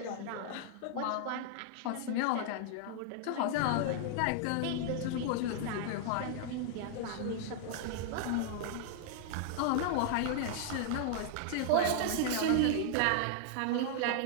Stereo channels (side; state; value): both; different; correlation -0.01